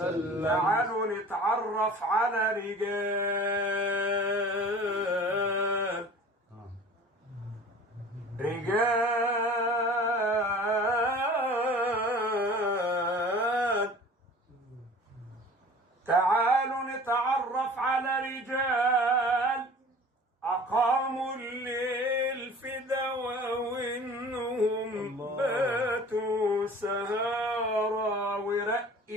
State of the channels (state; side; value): normal; both; correlation 0.43